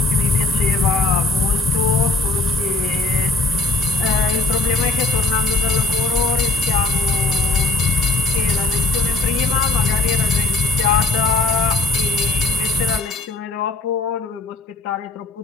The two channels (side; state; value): right; quieter; 3.4 dB